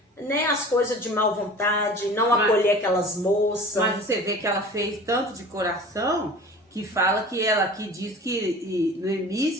né, as coisas de má vontade, não acolher aquelas moças. Mas você vê que ela fez tanto de coração que fala que ela aqui diz que Noemi,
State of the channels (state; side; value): normal; both; correlation 0.41